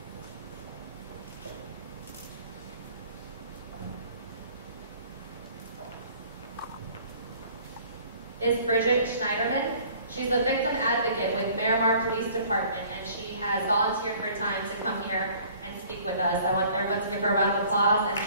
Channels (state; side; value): inverted; both; correlation -0.53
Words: is Bridget Schneiderman. She's a victim advocate with Miramar Police Department, and she has volunteered her time to come here and speak with us. I want everyone to give her a round of applause and